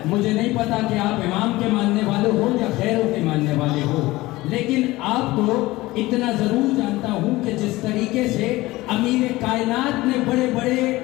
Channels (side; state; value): right; quieter; 19.2 dB